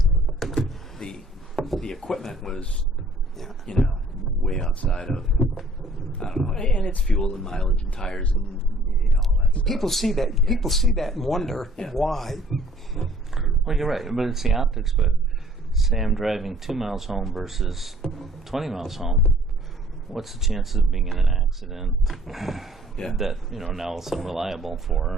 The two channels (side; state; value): both; normal; correlation 0.56